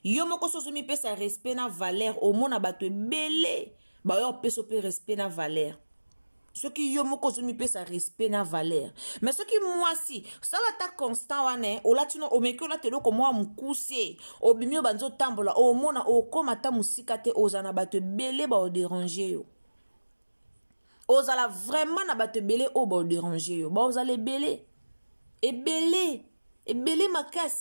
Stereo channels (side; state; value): both; inverted; correlation -1.00